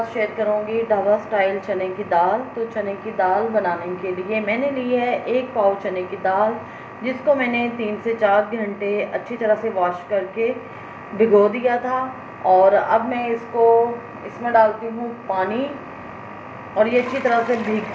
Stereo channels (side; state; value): both; identical; correlation 1.00